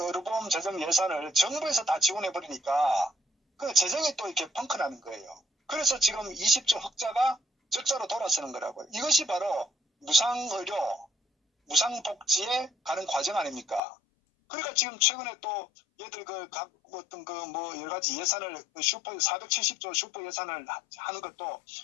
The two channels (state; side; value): drops out; right; at 13.8 s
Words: 의료보험 재정 예산을 정부에서 다 지원해버리니까 그 재정이 또 이렇게 펑크나는 거예요. 그래서 지금 20조 흑자가 적자로 돌아서는 거라고요. 이것이 바로 무상의료, 무상복지에 가는 과정 아닙니까? 그러니까 지금 최근에 또 얘들 각 어떤 뭐 여러 가지 예산을 슈퍼 470조 슈퍼 예산을 하는 것도